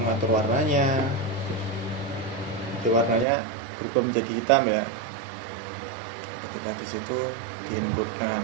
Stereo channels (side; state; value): left; drops out; at 3.2 s